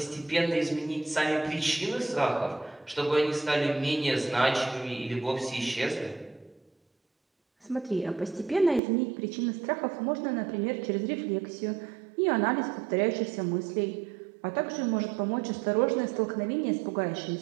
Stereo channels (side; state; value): left; drops out; at 8.8 s